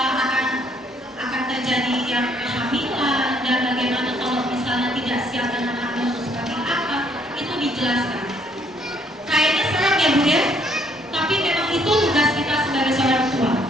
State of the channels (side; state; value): both; normal; correlation 0.66